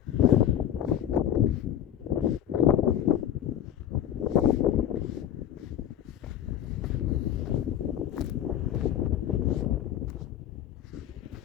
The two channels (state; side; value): quieter; right; 10.8 dB